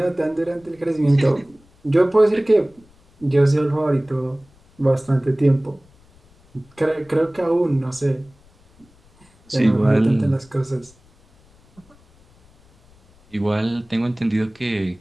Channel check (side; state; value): left; noise; rumble, 30 dB below the sound